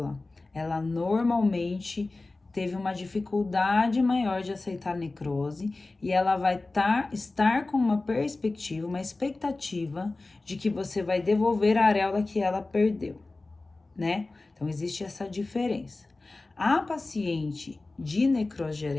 ela normalmente teve uma dificuldade maior de aceitar a necrose e ela vai estar com uma perspectiva, uma expectativa de que você vai devolver a areola que ela perdeu, né? Então, existe essa diferença. A paciente de necrose de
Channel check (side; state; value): right; quieter; 3.3 dB